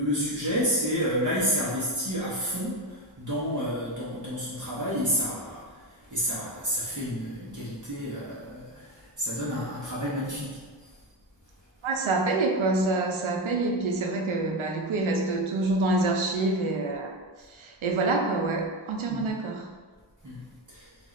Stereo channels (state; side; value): normal; both; correlation 0.15